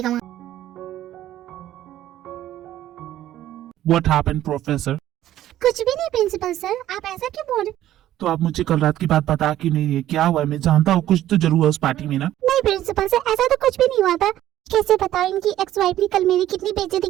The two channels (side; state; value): left; quieter; 13.1 dB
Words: वहाँ। What happened, professor? कुछ भी नहीं प्रिंसिपल सर, आप ऐसा क्यों बोल रहे? तो आप मुझे कल रात की बात बता क्यों नहीं रही है? क्या हुआ है? मैं जानता हूँ कुछ तो जरूर है उस पार्टी में ना। नहीं प्रिंसिपल सर, ऐसा तो कुछ भी नहीं हुआ था। कैसे बताऊं इनकी एक्स वाइफ ने कल मेरी कितनी बेइज्जती